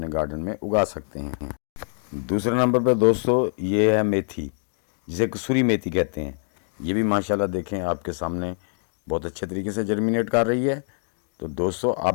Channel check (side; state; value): right; silent; digital silence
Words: गार्डन में उगा सकते हैं। दूसरे नंबर पर दोस्तों ये है मेथी, जिसे कसूरी मेथी कहते हैं। ये भी माशाल्लाह देखें आपके सामने बहुत अच्छे तरीके से जर्मिनेट कर रही है। तो दोस्तों, आप